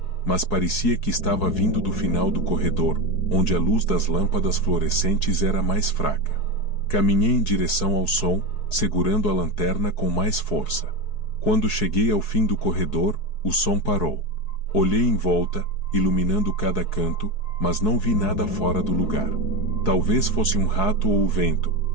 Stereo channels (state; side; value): late; right; 4.7 ms